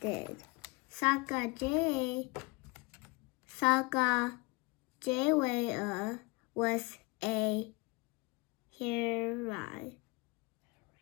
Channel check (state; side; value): quieter; right; 26.5 dB